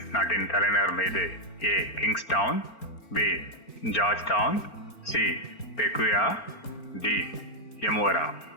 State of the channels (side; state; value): right; late; 4.4 ms